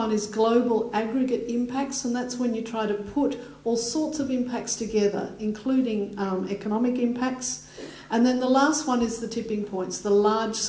is global aggregate impacts, and that's when you try to put all sorts of impacts together, including economic impacts. And then the last one is the tipping points, the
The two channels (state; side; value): identical; both; correlation 1.00